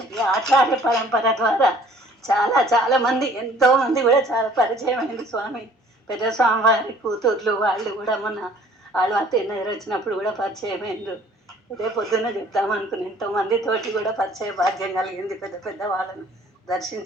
ఆచార్య పరంపర ద్వారా చాలా చాలా మంది ఎంతో మంది కూడా చాలా పరిచయం అయింది స్వామి. పెద్ద స్వామి వారి కూతుర్లు వాళ్ళు కూడా మొన్న వాళ్ళు అత్తయ్య వచ్చినప్పుడు కూడా పరిచయం అయిండ్రు. ఇదే పొద్దున్న చెప్తామనుకుని ఎంతోమంది తోటి కూడా పరిచయ భాగ్యం కలిగింది. పెద్ద పెద్ద వాళ్ళను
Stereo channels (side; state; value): both; normal; correlation 0.55